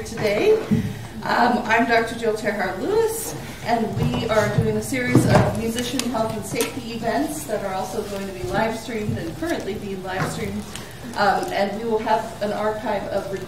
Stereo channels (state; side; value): identical; both; correlation 1.00